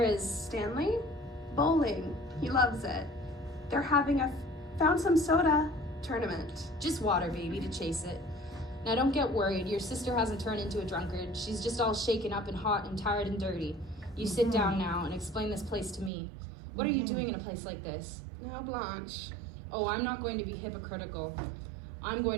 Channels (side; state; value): left; drops out; at 16.1 s